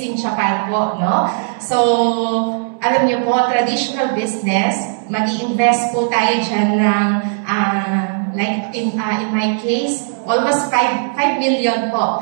Japan po, no? So, alam niyo po, traditional business, mag-i-invest po tayo dyan ng, like in my case, almost 5 million po.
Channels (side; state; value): left; silent; 67 dB below the other